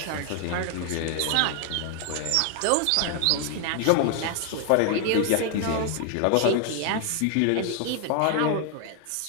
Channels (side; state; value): both; different; correlation 0.00